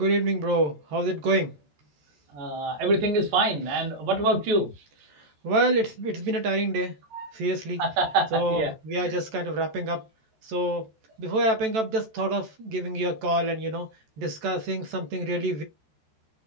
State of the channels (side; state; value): left; late; 14 ms